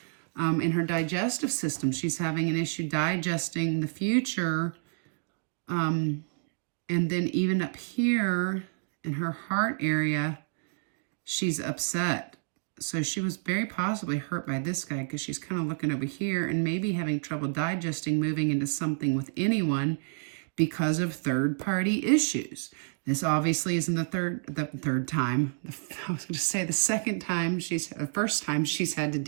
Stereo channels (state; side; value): silent; left; digital silence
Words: in her digestive system. She's having an issue digesting the future. And then even up here in her heart area, she's upset. So she was very possibly hurt by this guy, because she's kind of looking over here and maybe having trouble digesting moving into something with anyone because of third-party issues. This obviously isn't the third time. I was going to say the first time she's had to